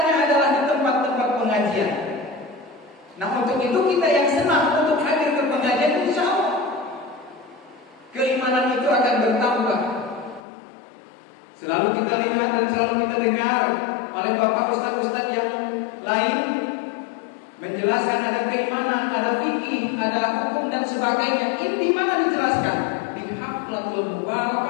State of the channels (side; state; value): right; drops out; at 10.4 s